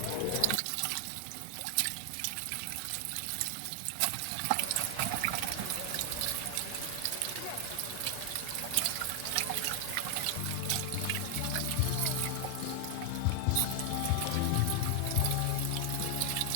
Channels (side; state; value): both; different; correlation 0.00